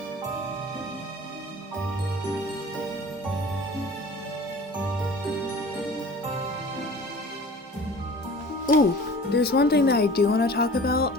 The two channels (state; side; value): normal; both; correlation 0.43